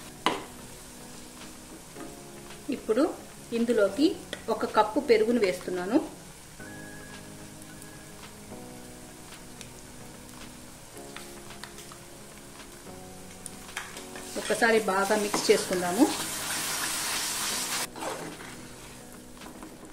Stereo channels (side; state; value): both; identical; correlation 1.00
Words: ఇప్పుడు ఇందులోకి 1 కప్పు పెరుగును వేస్తున్నాను. ఒకసారి బాగా మిక్స్ చేసుకుందాము.